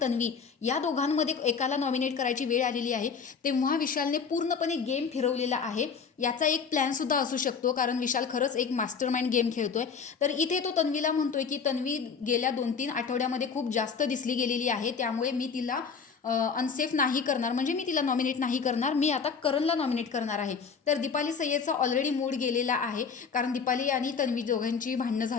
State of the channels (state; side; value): quieter; right; 5.9 dB